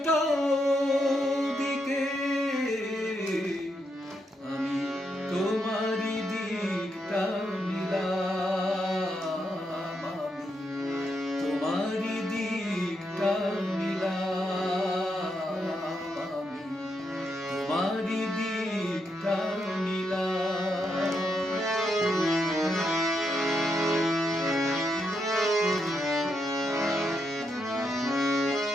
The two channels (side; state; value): both; normal; correlation 0.81